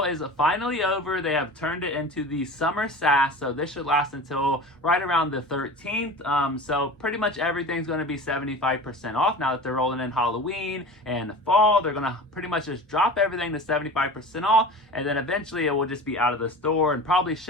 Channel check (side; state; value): both; normal; correlation 0.35